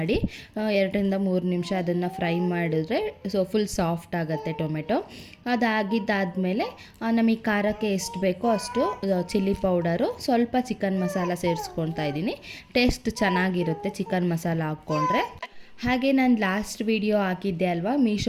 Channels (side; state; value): both; identical; correlation 1.00